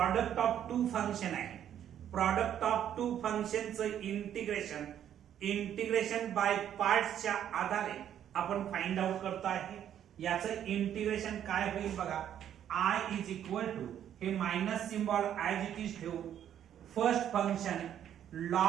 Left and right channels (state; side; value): quieter; left; 10.1 dB